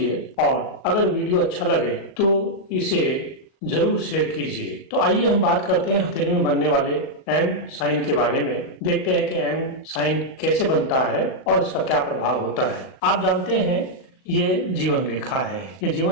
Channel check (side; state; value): right; late; 37 ms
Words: और अगर वीडियो अच्छा लगे तो इसे जरूर शेयर कीजिए। तो आइए हम बात करते हैं हथेली में बनने वाले एम साइन के बारे में। देखते हैं कि एम साइन कैसे बनता है और इसका क्या प्रभाव होता है। आप जानते हैं ये जीवन रेखा है, ये